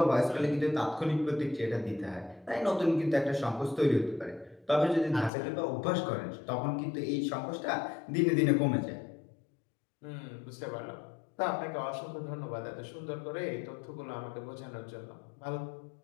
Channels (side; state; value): right; drops out; at 5.3 s